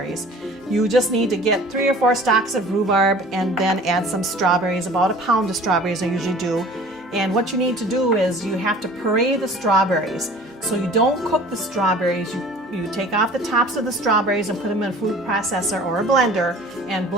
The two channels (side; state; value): both; normal; correlation 0.46